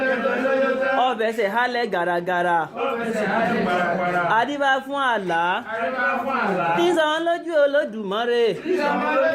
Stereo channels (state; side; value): identical; both; correlation 1.00